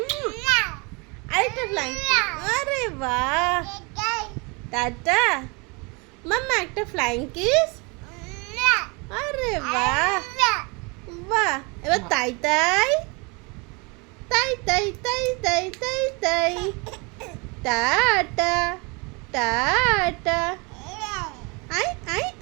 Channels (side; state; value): left; quieter; 29.7 dB